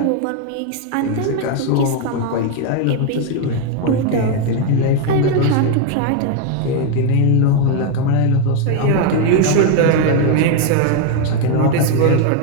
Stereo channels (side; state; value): both; different; correlation 0.01